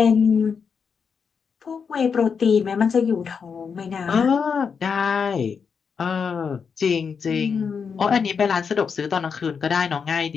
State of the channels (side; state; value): right; quieter; 6.1 dB